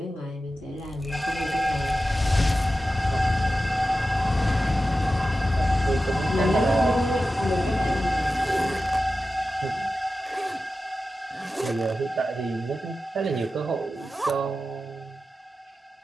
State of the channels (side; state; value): both; normal; correlation 0.93